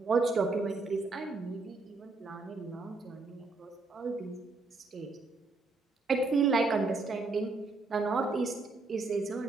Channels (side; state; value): left; quieter; 3.6 dB